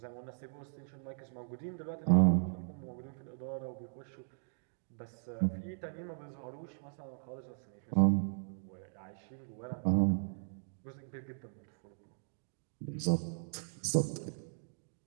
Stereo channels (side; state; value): left; silent; digital silence